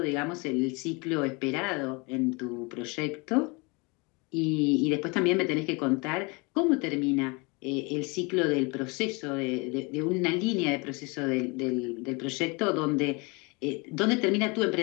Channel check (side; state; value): right; quieter; 28.6 dB